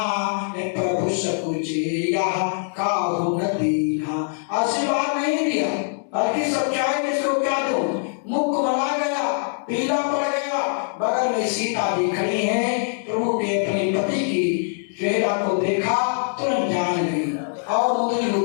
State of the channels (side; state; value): right; silent; digital silence